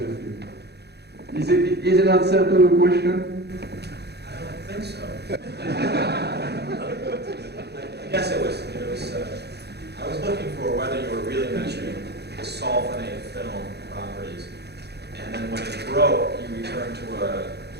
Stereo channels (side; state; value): left; late; 0.48 ms